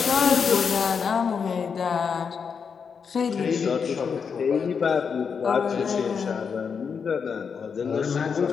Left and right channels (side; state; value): right; quieter; 6.2 dB